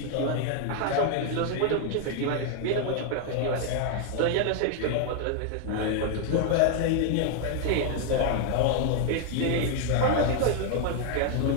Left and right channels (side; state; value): both; different; correlation 0.00